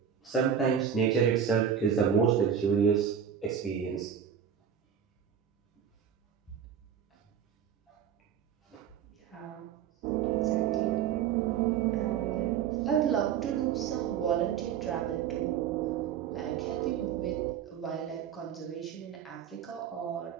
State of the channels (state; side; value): quieter; left; 8.4 dB